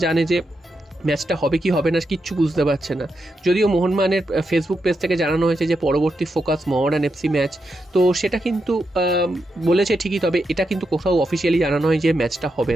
জানে যে ম্যাচটা হবে কি হবে না কিচ্ছু বুঝতে পারছে না। যদিও মোহনবাগানের ফেসবুক পেজ থেকে জানানো হয়েছে যে পরবর্তী ফোকাস মোহামেডান এফসি ম্যাচ, তো সেটা কিন্তু বলেছে ঠিকই, তবে এটা কিন্তু কোথাও অফিসিয়ালি জানানো হয় যে ম্যাচটা হবে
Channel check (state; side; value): normal; both; correlation 0.85